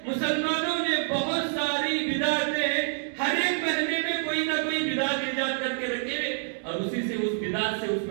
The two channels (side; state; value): left; silent; digital silence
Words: مسلمانوں نے بہت ساری بدعتیں ہر ایک مہینے میں کوئی نہ کوئی بدعت ایجاد کر کے رکھے، اور اسی سے اس بدعت سے اس